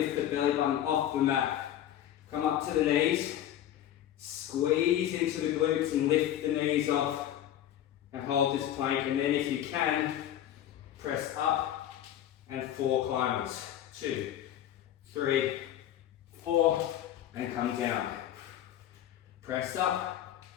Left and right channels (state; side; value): quieter; right; 11.5 dB